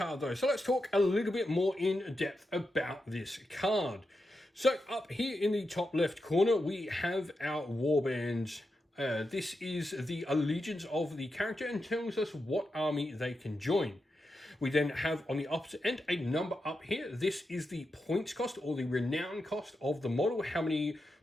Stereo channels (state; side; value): normal; both; correlation 0.87